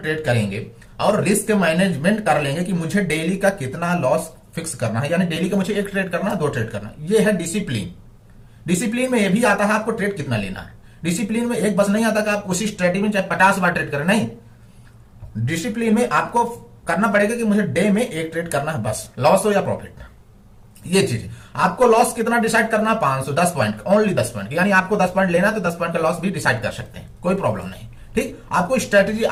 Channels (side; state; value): both; identical; correlation 1.00